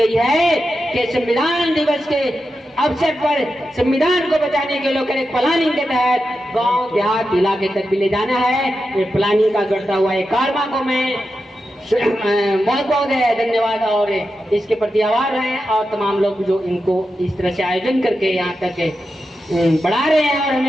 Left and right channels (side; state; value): both; normal; correlation 0.89